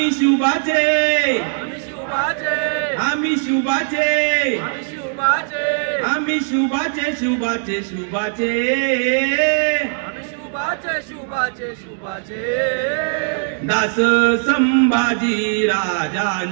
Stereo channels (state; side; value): silent; left; digital silence